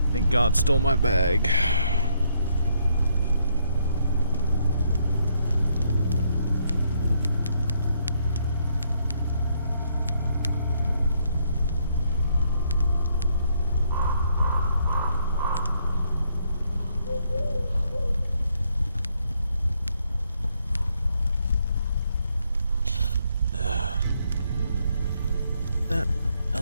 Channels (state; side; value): inverted; both; correlation -0.73